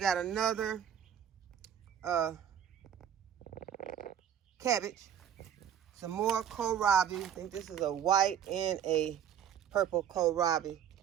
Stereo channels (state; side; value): quieter; left; 9.3 dB